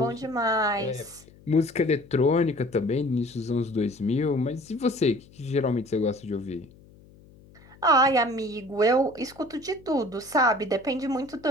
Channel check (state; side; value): noise; left; hum, 25 dB below the sound